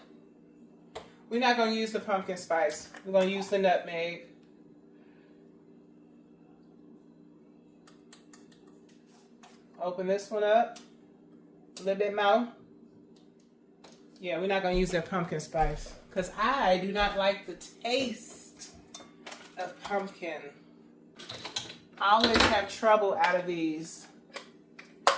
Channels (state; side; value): identical; both; correlation 1.00